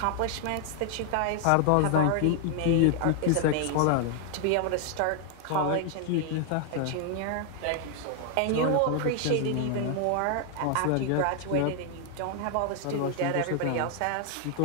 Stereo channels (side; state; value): both; different; correlation 0.00